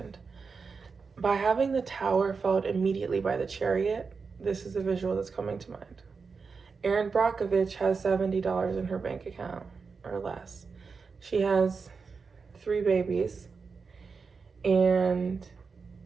By having the Tower followed immediately by the Chariot, this is the visual that's coming to mind. Erin Brockovich has $70 in her bank account or less. She has 3 babies, and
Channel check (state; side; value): quieter; left; 5.0 dB